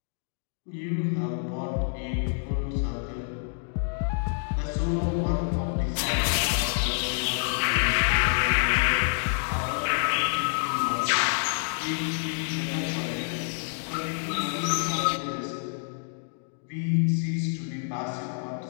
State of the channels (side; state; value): right; silent; 60 dB below the other